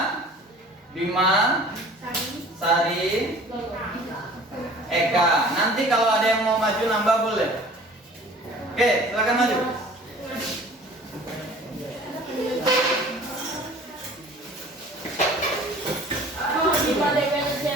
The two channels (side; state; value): both; normal; correlation 0.47